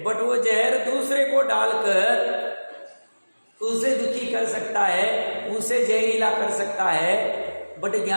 बट वो जहर दूसरे को डालकर उसे दुखी कर सकता है, उसे जहरीला कर सकता है। बट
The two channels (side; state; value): both; inverted; correlation -1.00